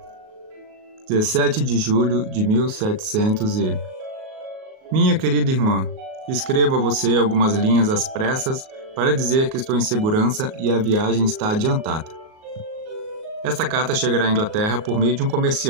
17 de julho de 1700 e... Minha querida irmã, escrevo a você algumas linhas às pressas para dizer que estou em segurança e a viagem está adiantada. Esta carta chegará à Inglaterra por meio de um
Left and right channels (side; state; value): left; late; 38 ms